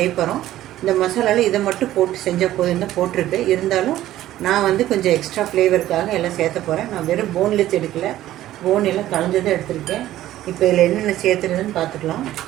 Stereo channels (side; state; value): left; quieter; 13.9 dB